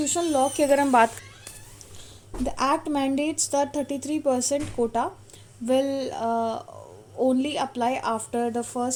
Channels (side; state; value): both; identical; correlation 1.00